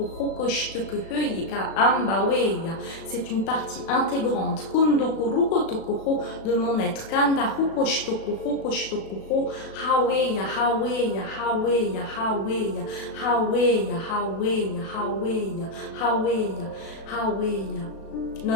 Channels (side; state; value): right; late; 36 ms